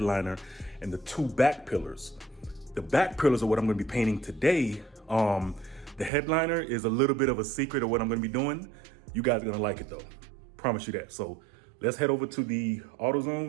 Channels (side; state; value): left; drops out; at 6.1 s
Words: and the two back pillars. The back pillars are what I'm gonna be painting today. The headliner is a little bit of a secret of what I'm gonna be doing. You guys are gonna like it though, promise you that. So let's head over to the